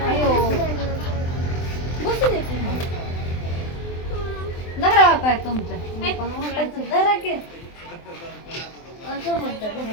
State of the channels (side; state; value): right; late; 23 ms